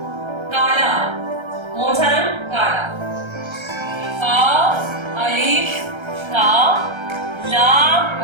काला, कौन सा रंग? काला। का अलिफ का, लाम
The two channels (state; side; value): late; left; 1.3 ms